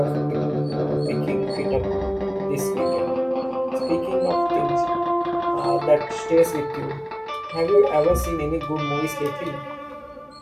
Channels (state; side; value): identical; both; correlation 1.00